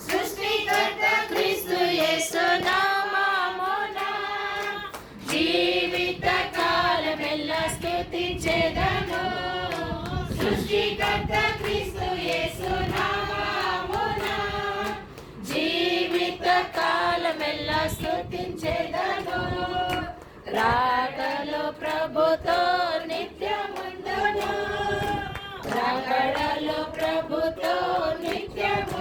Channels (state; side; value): identical; both; correlation 1.00